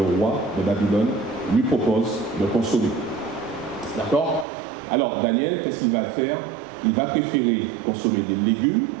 roi de Babylone, lui propose de consommer. D'accord? Alors Daniel, qu'est-ce qu'il va faire? Il va préférer consommer des légumes,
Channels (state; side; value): drops out; left; at 4.5 s